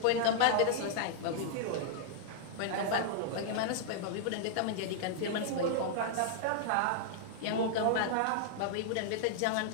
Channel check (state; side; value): different; both; correlation -0.01